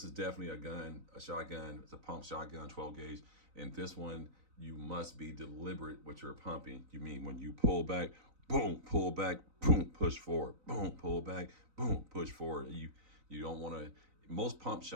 is definitely a gun, a shotgun. It's a pump shotgun, 12 gauge. And this one, you must be deliberate with your pumping. You mean when you pull back, boom, pull back, boom, push forward, boom, pull back, boom, push forward. You don't want to. Most pump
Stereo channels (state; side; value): late; left; 3.9 ms